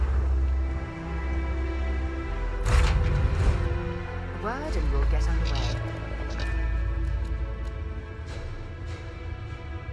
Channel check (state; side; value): identical; both; correlation 1.00